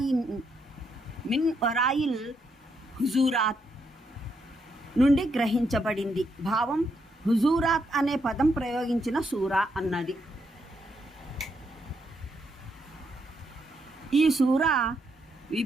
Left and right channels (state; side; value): normal; both; correlation 0.78